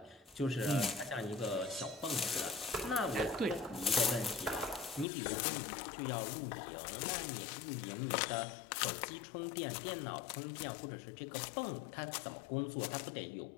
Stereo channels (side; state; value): right; drops out; at 5.1 s